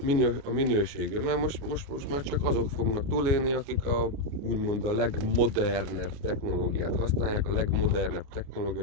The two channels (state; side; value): late; left; 29 ms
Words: a minőségű, mert most már csak azok fognak túlélni, akik úgymond a legmodernebb technológiát használják, a legmodernebb technológia